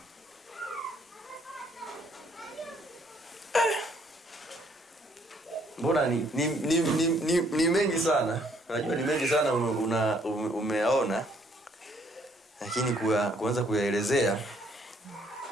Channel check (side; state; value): both; normal; correlation 0.66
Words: Mbona ni mengi sana. Unajua ni mengi sana umeona. Lakini kuanza kuyaelezea.